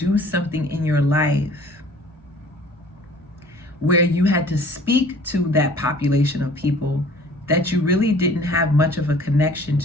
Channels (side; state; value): both; normal; correlation 0.51